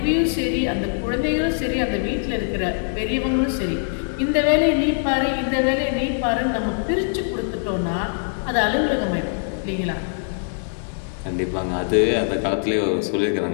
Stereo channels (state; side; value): silent; right; 64 dB below the other